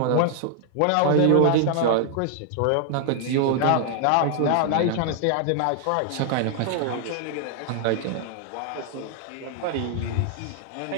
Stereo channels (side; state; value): both; different; correlation 0.00